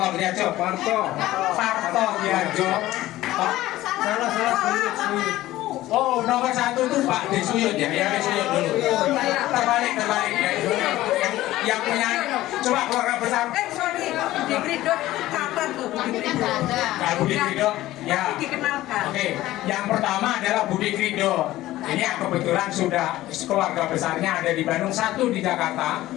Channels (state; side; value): quieter; right; 15.9 dB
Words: Diarjo. Marto Diarjo. Salah. Oh, nomor 1 itu Pak Desuyut ya, Desuyut dulu. Terbalik ya. Yang punya, coba keluarga besar. Sorry, Budi Krido catat tuh, Budi Krido. Budi Krido, ya. Dikenalkan. Oke, yang pertama adalah Budi Krido. Ini yang kebetulan sudah keluarga besarnya ada di Bandung, 1 di Jakarta,